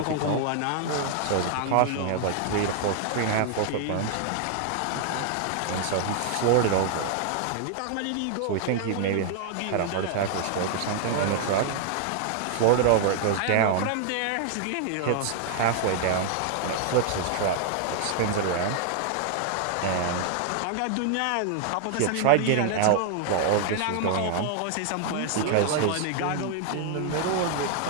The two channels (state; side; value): different; both; correlation 0.00